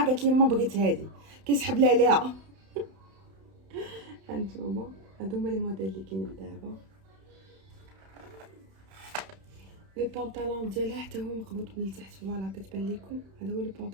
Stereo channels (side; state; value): left; late; 31 ms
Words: قالت لي ماما بغيت هادي، كيسحب لها عليها. هانتوما هادو هما لي موديل اللي كاينين دابا. لي بونطالون ديالها حتى هو مقبوط من التحت. فوالا كتبان لكم، هذا هو لي